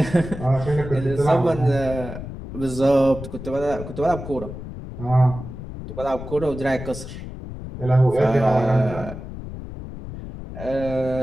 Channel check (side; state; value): left; noise; rumble, 10 dB below the sound